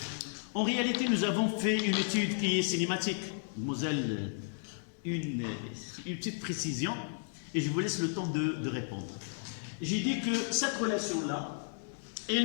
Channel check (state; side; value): silent; right; digital silence